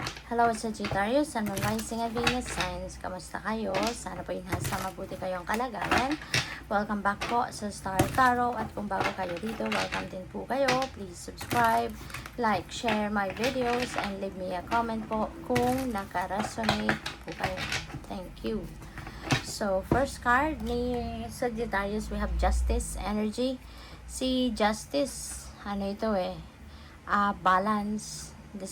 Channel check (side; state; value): both; identical; correlation 1.00